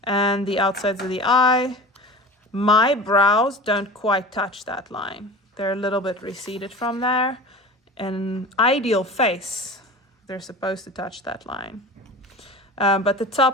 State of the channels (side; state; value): both; normal; correlation 0.35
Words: and the outsides of the eye, my brows don't quite touch that line. They're a little bit receded from there. An ideal face, they're supposed to touch that line. But the